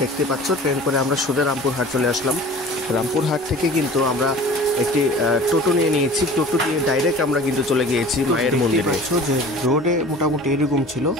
দেখতে পাচ্ছ, ট্রেন করে আমরা সোজা রামপুরহাট চলে আসলাম। রামপুরহাট থেকে কিন্তু আমরা একটি টোটো নিয়েছি। টোটো দিয়ে ডাইরেক্ট আমরা কিন্তু চলে গিয়েছি মায়ের মন্দিরে। যে রোডে মোটামুটি এরকম ছিল,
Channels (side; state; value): both; normal; correlation 0.42